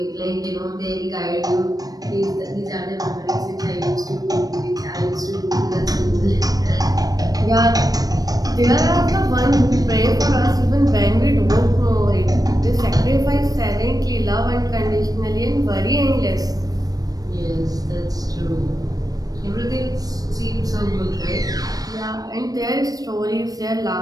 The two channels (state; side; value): late; left; 0.18 ms